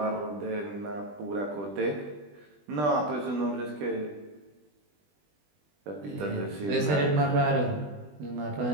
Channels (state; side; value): late; left; 20 ms